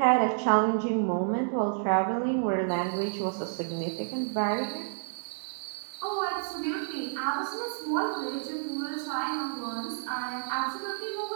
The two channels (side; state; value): left; silent; digital silence